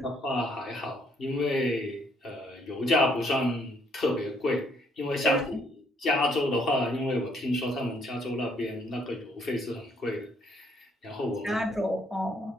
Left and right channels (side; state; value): both; normal; correlation 0.68